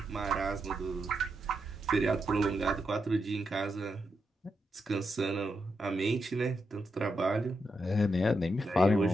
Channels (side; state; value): both; normal; correlation 0.84